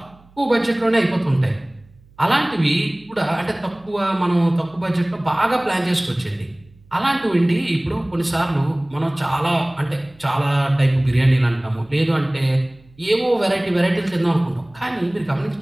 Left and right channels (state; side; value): noise; right; hum, 28 dB below the sound